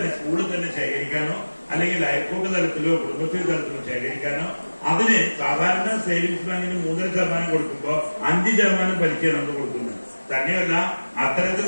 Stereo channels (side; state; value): both; inverted; correlation -1.00